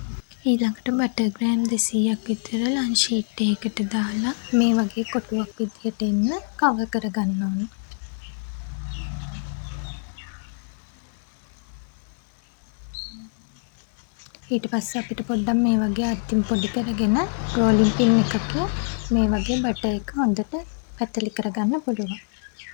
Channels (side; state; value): right; silent; digital silence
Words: ඊළඟට බටර් ග්‍රෑම් 200ක් විතර ලන්ච් ෂීට් එකකට දාලා මේ වගේ කොටුවක් විදියට එන්න කවර් කරගන්න ඕන. ඊට පස්සේ අපිට පොඩ්ඩක් මේ වගේ අතින් පොඩි කරගෙන රෝලින් පින් එකකින් මේ වගේ බටර් එක හොඳට පැතලි කරගන්න පුළුවන්.